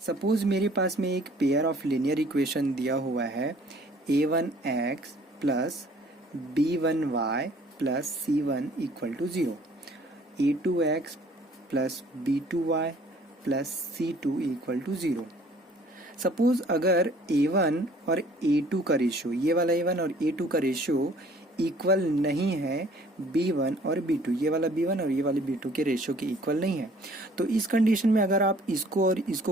सपोज मेरे पास में एक पेयर ऑफ लीनियर इक्वेशन दिया हुआ है, a1x plus b1y plus c1 equal to 0, a2x plus b2y plus c2 equal to 0। Suppose अगर a1 और a2 का रेशियो, ये वाला a1 और a2 का रेशियो इक्वल नहीं है b1 और b2, ये वाला b1 और ये वाले b2 के रेशियो के इक्वल नहीं है, तो इस कंडीशन में अगर आप इसको और इसको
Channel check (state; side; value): normal; both; correlation 0.55